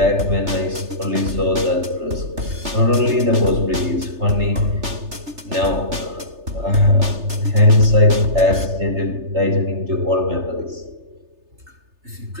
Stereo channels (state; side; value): late; left; 3.3 ms